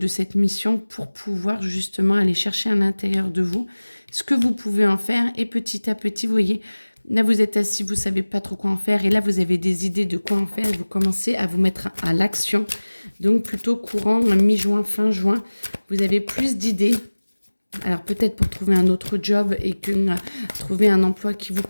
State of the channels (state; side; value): inverted; both; correlation -1.00